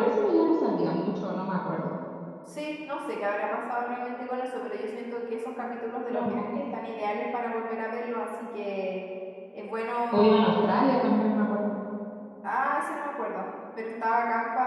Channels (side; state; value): both; identical; correlation 1.00